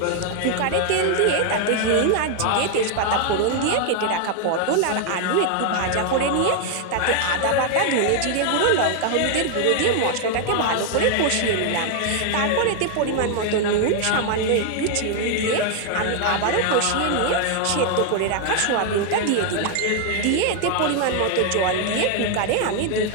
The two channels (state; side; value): different; both; correlation 0.00